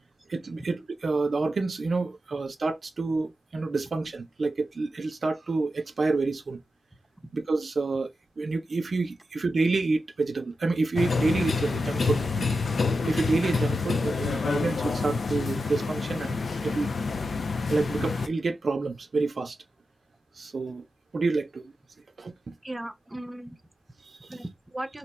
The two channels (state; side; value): normal; both; correlation 0.90